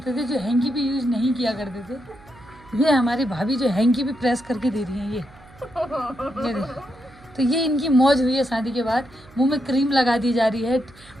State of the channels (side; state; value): right; noise; hum, 24 dB below the sound